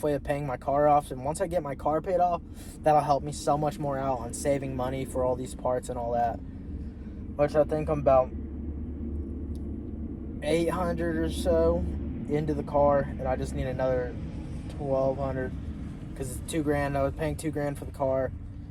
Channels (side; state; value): both; identical; correlation 1.00